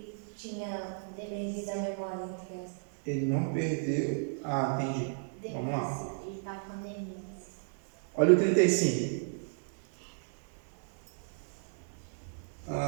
tinha perdido a memória? Ele não perdeu. Entendi. Vamos lá. Ele está com demência. Olha o 35.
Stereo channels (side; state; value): left; silent; digital silence